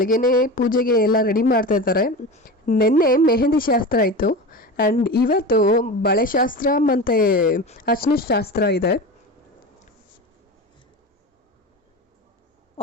ಪೂಜೆಗೆ ಎಲ್ಲ ರೆಡಿ ಮಾಡ್ತಾ ಇದ್ದಾರೆ. ನಿನ್ನೆ ಮೆಹಂದಿ ಶಾಸ್ತ್ರ ಇತ್ತು ಆ್ಯಂಡ್ ಇವತ್ತು ಬಳೆ ಶಾಸ್ತ್ರ ಮತ್ತು ಅರ್ಶಿನ ಶಾಸ್ತ್ರ ಇದೆ.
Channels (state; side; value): normal; both; correlation 0.28